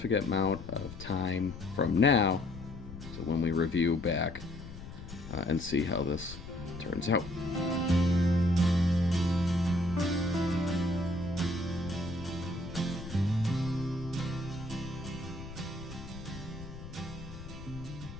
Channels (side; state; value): left; noise; rumble, 12 dB below the sound